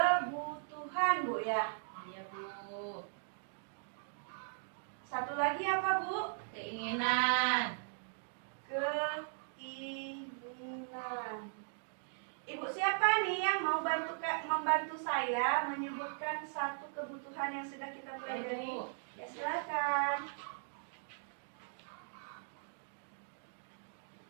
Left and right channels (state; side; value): silent; left; digital silence